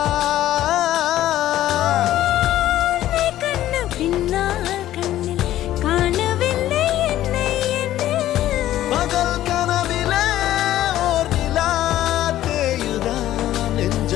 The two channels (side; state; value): right; quieter; 13.5 dB